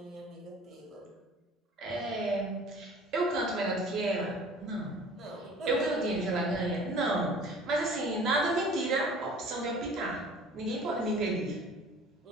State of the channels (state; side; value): normal; both; correlation 0.47